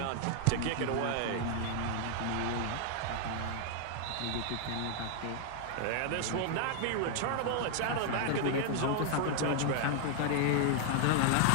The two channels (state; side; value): different; both; correlation 0.00